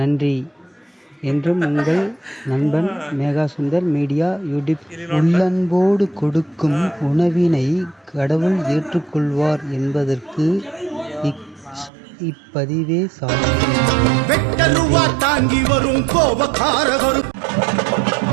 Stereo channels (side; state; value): left; drops out; at 11.9 s